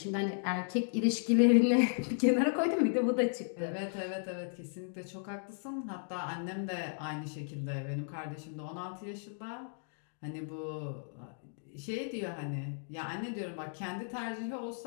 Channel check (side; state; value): right; silent; digital silence